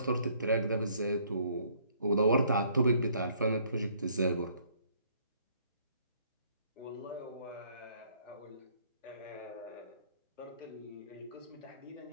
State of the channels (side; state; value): both; inverted; correlation -0.63